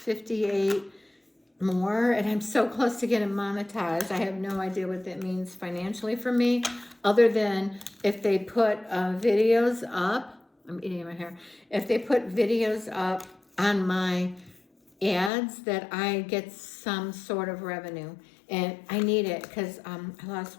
more, and I'm so close to getting monetized. I have no idea what that means financially for me, other than if they put videos up. I'm eating my hair. If they put videos up on my ads, that I get some sort of revenue. And I need it, because I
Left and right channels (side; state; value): right; drops out; at 15.3 s